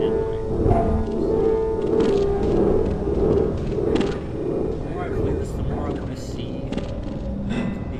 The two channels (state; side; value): identical; both; correlation 1.00